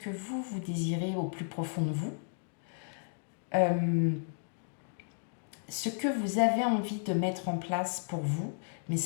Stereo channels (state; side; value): silent; right; digital silence